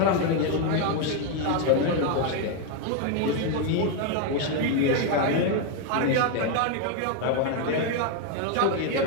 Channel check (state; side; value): different; both; correlation 0.01